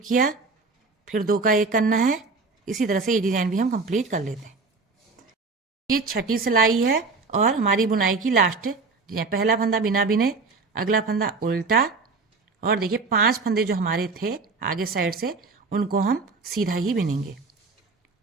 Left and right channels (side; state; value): left; quieter; 4.1 dB